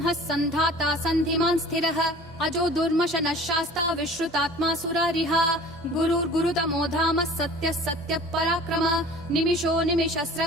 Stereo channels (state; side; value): normal; both; correlation 0.45